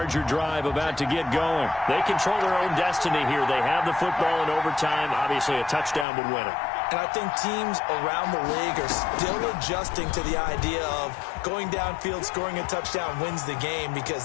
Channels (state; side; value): drops out; right; at 6.1 s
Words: drive about to get going. They control their own destiny here. They have the football in overtime. Obviously, a touchdown would win it. And I think teams around the league are still adjusting to the idea of going downfield, scoring a touchdown wins the game because